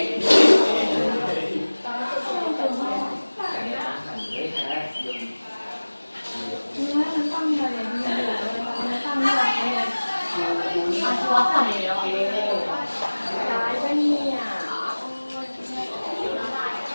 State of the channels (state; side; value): inverted; both; correlation -1.00